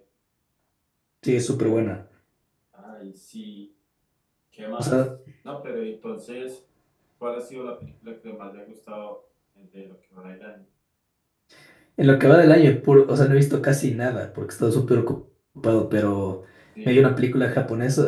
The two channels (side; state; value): both; identical; correlation 1.00